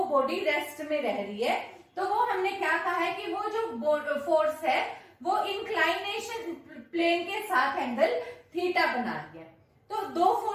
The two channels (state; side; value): identical; both; correlation 1.00